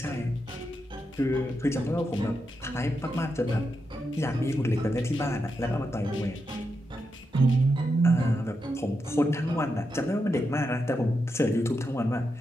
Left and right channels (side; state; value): both; normal; correlation 0.85